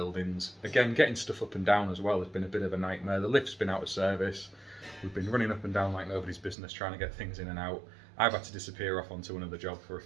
Again, getting stuff up and down as well has been a bit of a nightmare. The lift's been out of service. We've been running up and down like nobody's business trying to get things in and out. I've had to disappear off onto another job for a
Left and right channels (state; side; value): drops out; left; at 6.6 s